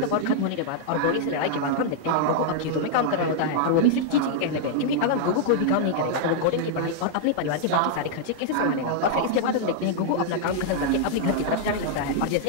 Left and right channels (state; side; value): different; both; correlation -0.01